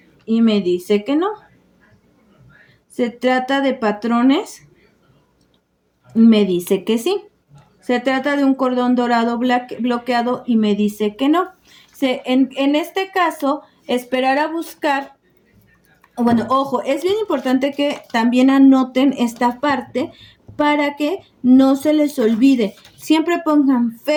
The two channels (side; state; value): both; identical; correlation 1.00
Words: y me dice que no. Se trata de patrones y me dice que sí. Se trata de un cordón dorado bloqueado y me dice que no. En este caso, esperar a buscar. Bueno, ojo, es bien importante que también anoten esta parte para que no se les olvide. Siempre pongan